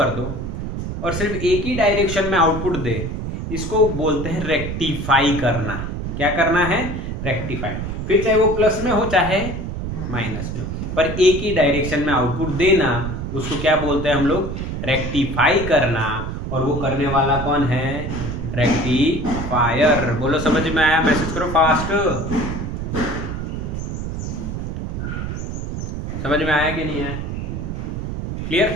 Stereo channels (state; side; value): noise; right; rumble, 5 dB below the sound